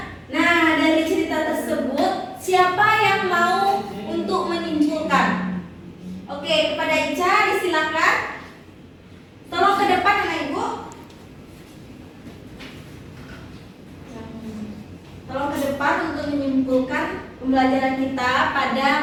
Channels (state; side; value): identical; both; correlation 1.00